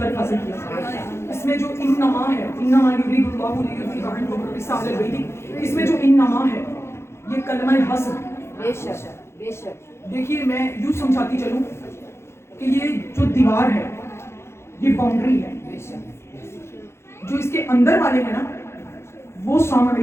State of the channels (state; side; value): late; right; 0.13 ms